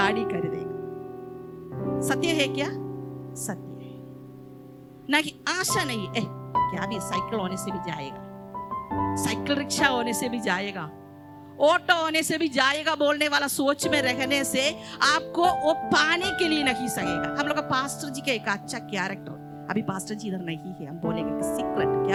खरीदेगा। सत्य है क्या? सत्य है ना कि आशा नहीं है। क्या भी साइकिल होने से भी जाएगा, साइकिल रिक्शा होने से भी जाएगा, ऑटो होने से भी जाएगा बोलने वाला सोच में रहने से आपको वो पाने के लिए नहीं सकेगा। हम लोग का पास्टर जी का एक अच्छा कैरेक्टर, अभी पास्टर जी इधर नहीं है, हम बोलेंगे कि सीक्रेट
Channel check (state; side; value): identical; both; correlation 1.00